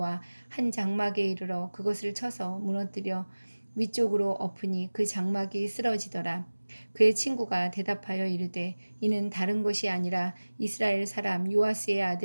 한 장막에 이르러 그것을 쳐서 무너뜨려 위쪽으로 엎으니 그 장막이 쓰러지더라. 그의 친구가 대답하여 이르되 이는 다른 것이 아니라 이스라엘 사람 요아스의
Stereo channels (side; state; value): both; inverted; correlation -1.00